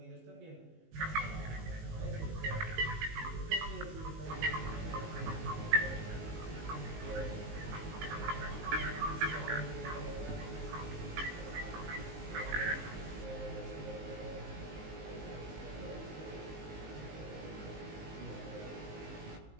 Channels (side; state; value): left; late; 19 ms